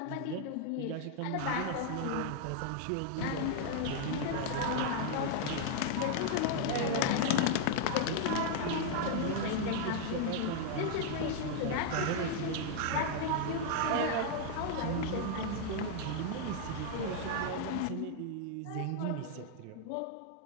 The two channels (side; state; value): both; different; correlation 0.00